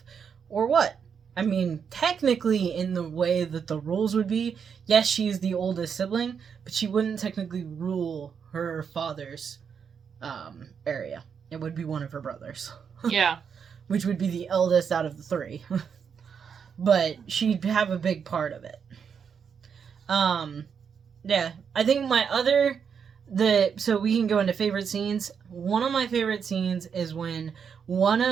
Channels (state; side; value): quieter; left; 6.9 dB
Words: or what? Technically, in the way that the rules would be, yes, she's the oldest sibling, but she wouldn't technically rule her father's area. It would be one of her brothers. Yeah. Which would be the eldest out of the three. But she'd have a big part of it. Yeah. I think so we can go into favorite scenes. One of my favorite scenes is when one